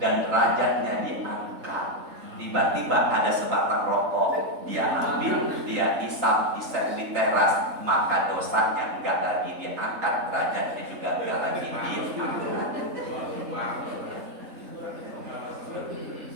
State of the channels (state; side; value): late; left; 3.7 ms